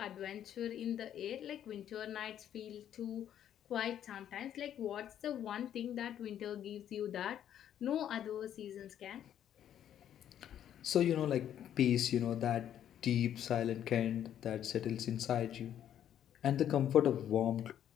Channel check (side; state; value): right; quieter; 10.3 dB